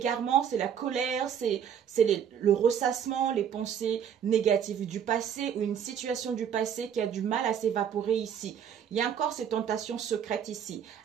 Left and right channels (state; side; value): quieter; left; 8.4 dB